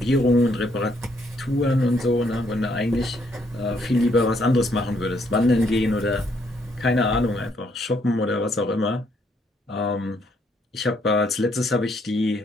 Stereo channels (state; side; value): normal; both; correlation 0.71